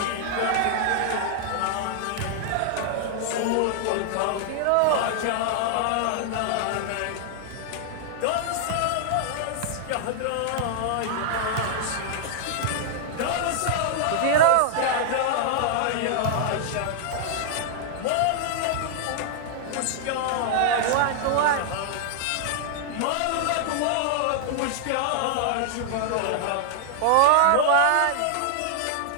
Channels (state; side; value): different; both; correlation -0.01